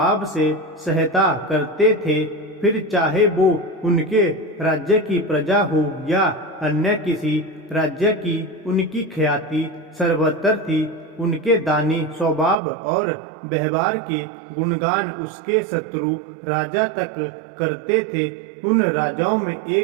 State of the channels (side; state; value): left; drops out; at 12.6 s